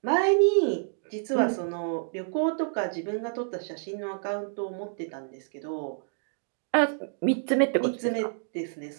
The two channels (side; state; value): left; silent; digital silence